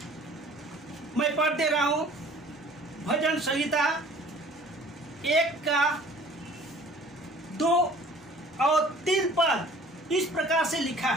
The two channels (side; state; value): both; normal; correlation 0.50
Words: मैं पढ़ दे रहा हूँ, भजन संहिता 1 का 2 और 3 पद इस प्रकार से लिखा